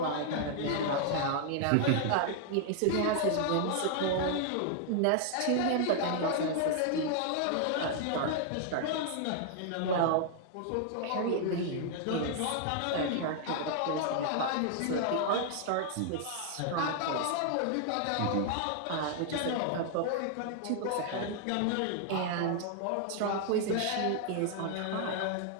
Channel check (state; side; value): different; both; correlation 0.00